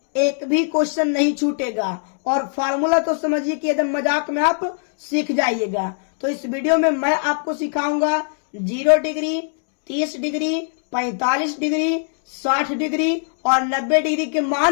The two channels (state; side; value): silent; right; 65 dB below the other